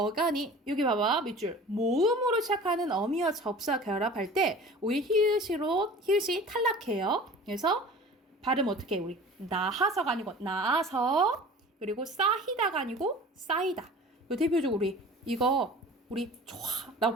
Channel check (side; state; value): both; normal; correlation 0.42